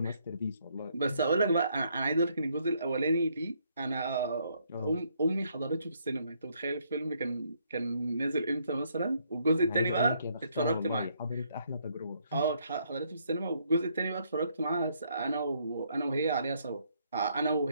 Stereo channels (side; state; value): both; inverted; correlation -0.70